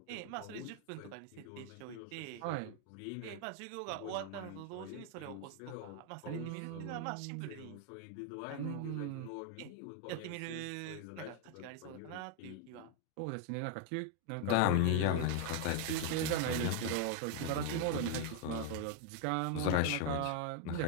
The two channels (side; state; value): both; different; correlation 0.00